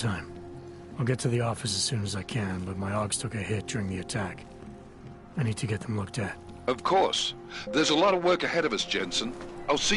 I'll get to the office as soon as I can, but my Augs took a hit during the attack. I need to get them looked at. Of course. There's a lot of work ahead of us, Jensen. I'll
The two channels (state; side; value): identical; both; correlation 1.00